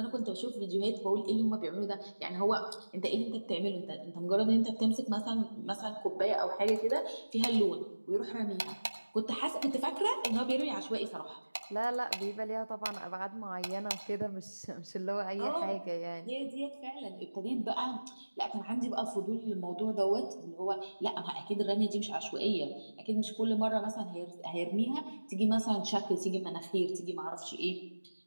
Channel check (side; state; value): both; inverted; correlation -1.00